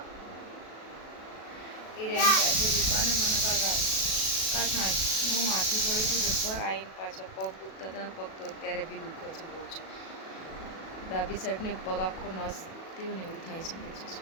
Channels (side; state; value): right; late; 37 ms